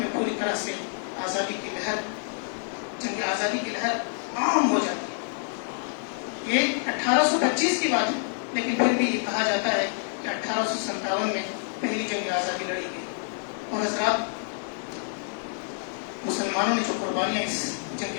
پوری طرح سے جنگ آزادی کی لہر عام ہو جاتی ہے۔ یہ 1825 کی بات ہے، لیکن پھر بھی یہ کہا جاتا ہے کہ 1857 میں پہلی جنگ آزادی لڑی گئی۔ اور حضرات، مسلمانوں نے جو قربانیاں اس جنگ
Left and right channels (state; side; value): silent; right; 60 dB below the other